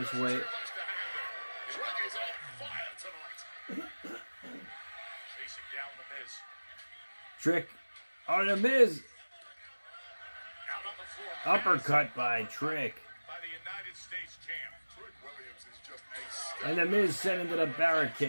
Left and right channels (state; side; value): inverted; both; correlation -1.00